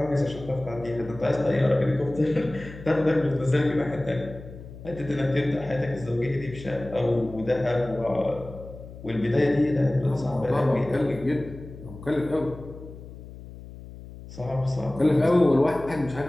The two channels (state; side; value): noise; left; hum, 15 dB below the sound